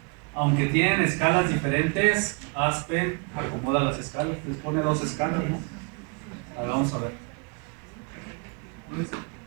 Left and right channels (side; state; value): left; quieter; 33.4 dB